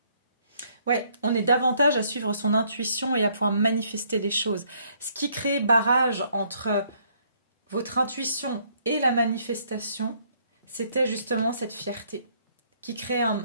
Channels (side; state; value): both; inverted; correlation -0.67